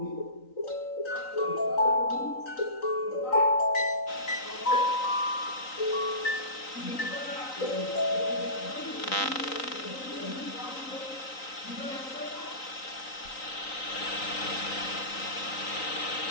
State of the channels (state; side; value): late; right; 3.9 ms